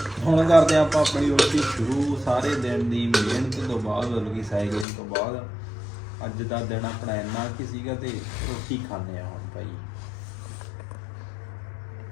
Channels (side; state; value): right; drops out; at 4.9 s